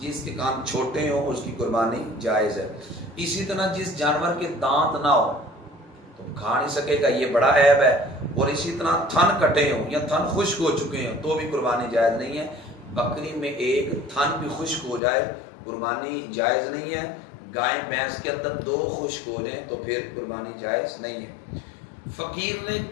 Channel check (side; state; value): right; drops out; at 15.0 s